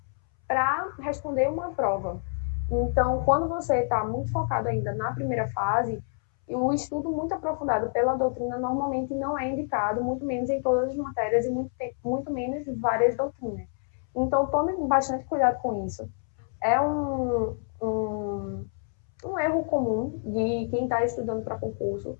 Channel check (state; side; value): silent; right; 60 dB below the other